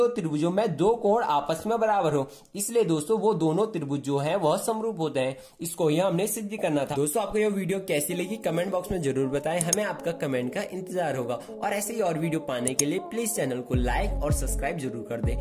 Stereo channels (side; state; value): both; identical; correlation 1.00